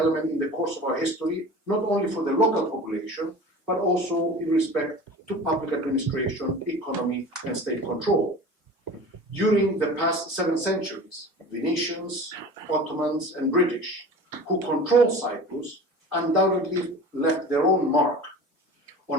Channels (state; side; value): normal; both; correlation 0.37